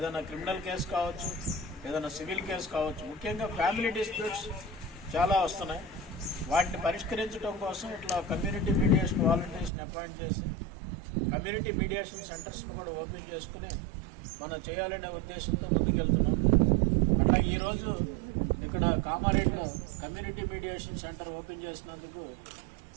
క్రిమినల్ కేసు కావచ్చు, ఏదైనా సివిల్ కేసు కావచ్చు. ముఖ్యంగా ఫ్యామిలీ డిస్ప్యూట్స్ చాలా వస్తున్నాయి. వాటిని పరిష్కరించడం కోసం ఇట్లా కమ్యూనిటీ మీడియేషన్ వాలంటీర్స్ని అపాయింట్ చేసి కమ్యూనిటీ మీడియేషన్ సెంటర్స్ని కూడా ఓపెన్ చేసుకుని మనం చేయాలనే ఉద్దేశంతో ముందుకెళ్తున్నాం. అట్లాగే ఈరోజు ఇక్కడ కామారెడ్డిలో కమ్యూనిటీ మీడియేషన్ సెంటర్ ఓపెన్ చేసినందుకు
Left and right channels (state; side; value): drops out; left; at 9.7 s